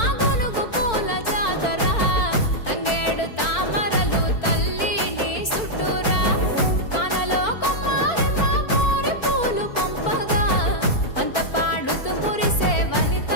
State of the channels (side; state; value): right; late; 4.4 ms